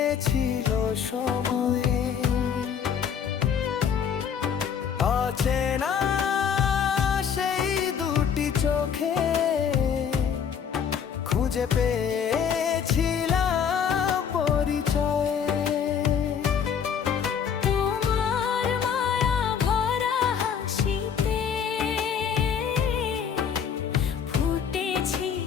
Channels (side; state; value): right; quieter; 7.5 dB